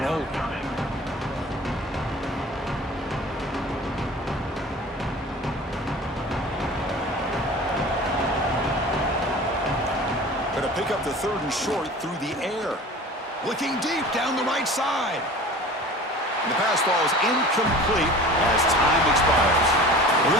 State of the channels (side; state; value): both; normal; correlation 0.41